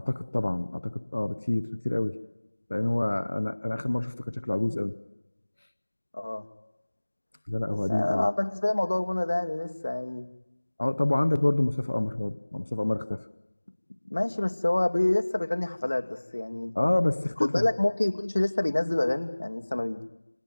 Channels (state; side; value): inverted; both; correlation -1.00